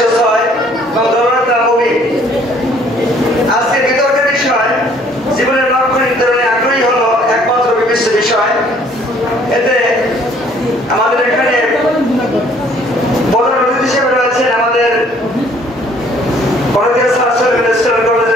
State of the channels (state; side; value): normal; both; correlation 0.59